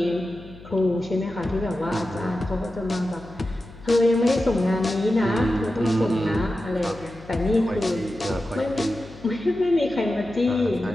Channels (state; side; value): noise; left; hum, 19 dB below the sound